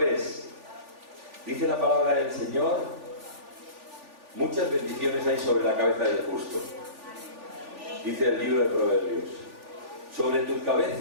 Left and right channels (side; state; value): left; late; 3.4 ms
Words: es. Dice la palabra del Señor: muchas bendiciones hay sobre la cabeza del justo. Dice el libro de Proverbios: sobre tu